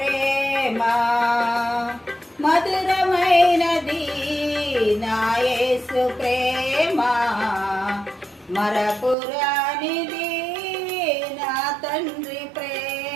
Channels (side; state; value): left; drops out; at 9.2 s